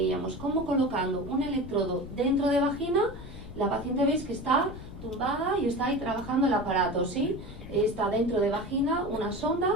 como colocando un electrodo dentro de vagina, la paciente veis que está tumbada y está ahí trabajando el aparato, ¿sí? Está dentro de vagina una sonda,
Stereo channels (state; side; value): noise; left; rumble, 13 dB below the sound